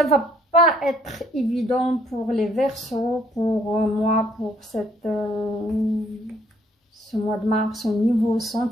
va pas être évident pour les Verseaux, pour moi, pour ce mois de mars au niveau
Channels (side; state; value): both; normal; correlation 0.65